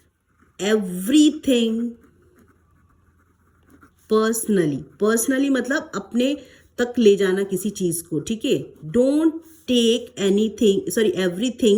everything personally. Personally मतलब अपने तक ले जाना किसी चीज को। ठीक है, Don't take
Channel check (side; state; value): both; identical; correlation 1.00